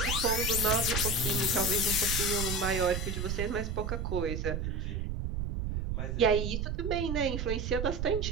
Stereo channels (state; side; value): noise; right; rumble, 2 dB below the sound